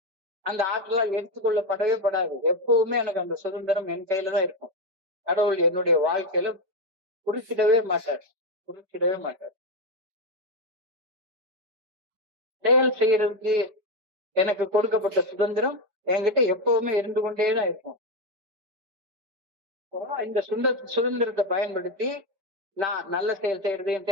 அந்த ஆற்றலால் எடுத்துக்கொள்ளப்படவே படாது. எப்பவுமே எனக்கு அந்த சுதந்திரம் என் கையில தான் இருக்கும். கடவுள் என்னுடைய வாழ்க்கையில குறுக்கிடவே மாட்டார். செயல் செய்யறதுக்கு எனக்கு கொடுக்கப்பட்ட சுதந்திரம் என்கிட்ட எப்பவுமே இருந்து கொண்டேதான் இருக்கும். இந்த சுதந்திரத்தை பயன்படுத்தி நான் நல்ல செயல் செய்யறதையும்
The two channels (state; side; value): late; left; 5.1 ms